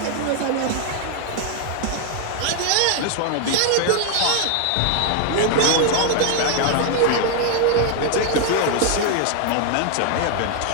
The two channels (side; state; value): both; different; correlation 0.00